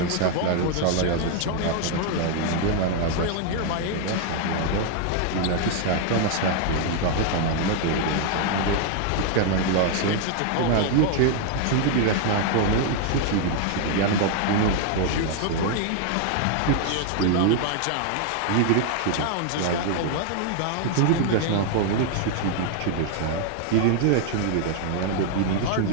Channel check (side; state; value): both; different; correlation 0.00